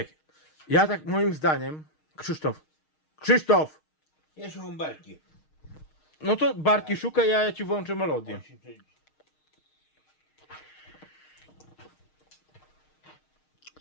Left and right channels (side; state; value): right; late; 6.5 ms